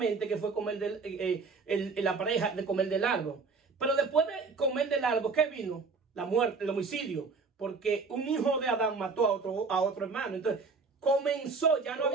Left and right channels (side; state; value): left; quieter; 4.5 dB